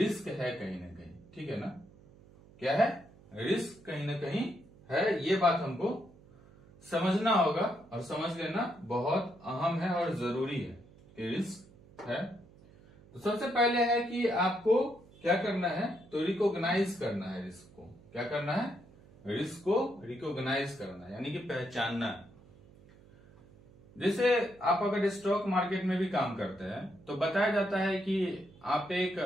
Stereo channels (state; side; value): noise; right; hum, 24 dB below the sound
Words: है कहीं ना कहीं। ठीक है ना। क्या है, रिस्क कहीं ना कहीं है। ये बात हमको समझना होगा और समझ लेना बहुत अहम है और जरूरी है कि रिस्क है। तो सबसे पहले है कि आपको क्या करना है, तो रिकॉग्नाइज करना है रिस्क को। क्या करना है, रिस्क को रिकॉग्नाइज करना है, यानी कि पहचानना है। जैसे आप अगर स्टॉक मार्केट में भी काम करते हैं तो बताया जाता है कि आप एक